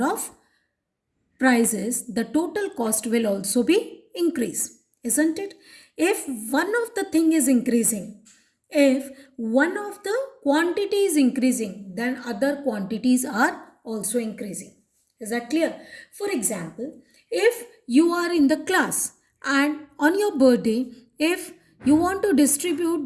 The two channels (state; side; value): identical; both; correlation 1.00